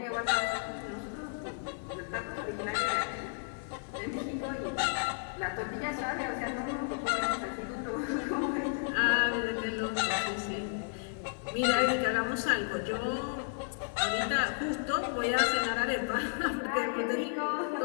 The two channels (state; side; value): silent; right; 56 dB below the other